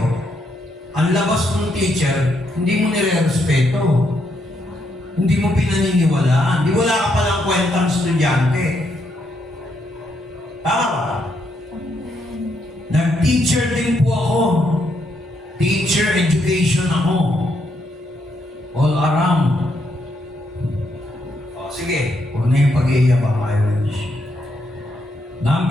ang labas ng teacher, hindi mo nire-respeto. Hindi mo pinaniniwalaan. Di wala ka palang kwentang estudyante. Tama ba? Nag-teacher din po ako. Teacher education ako. All around. O, sige. Huwag na yung pag-iiyak ang Irish.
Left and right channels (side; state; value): both; normal; correlation 0.77